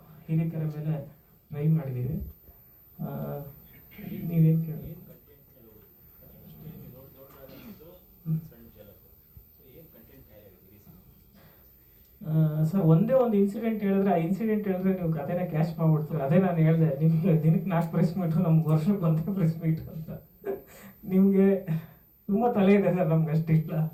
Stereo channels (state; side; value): identical; both; correlation 1.00